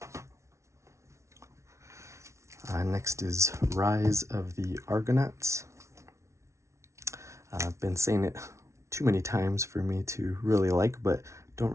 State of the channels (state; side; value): late; left; 0.14 ms